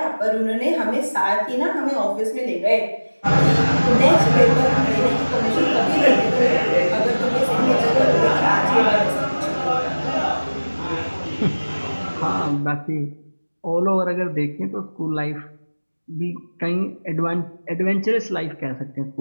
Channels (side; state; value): both; inverted; correlation -1.00